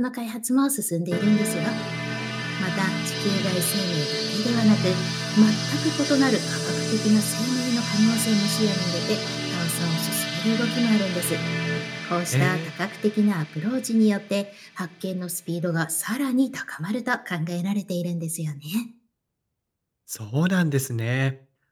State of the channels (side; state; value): both; identical; correlation 1.00